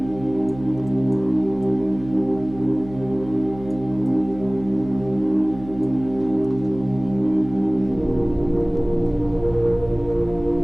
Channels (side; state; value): right; noise; hum, 16 dB below the sound